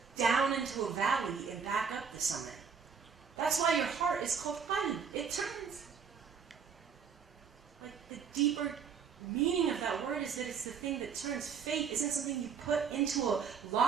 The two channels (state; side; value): quieter; left; 6.5 dB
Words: down into a valley and back up the summit. That's why your heart is called qalb. It turns. Like, the deeper meaning of that word is that it's the thing that turns. Faith isn't something you put into a